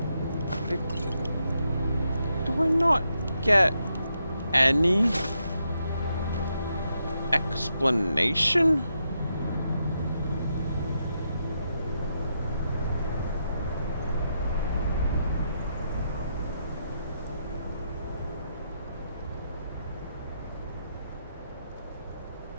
Do I not get any explanation?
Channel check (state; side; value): inverted; both; correlation -0.82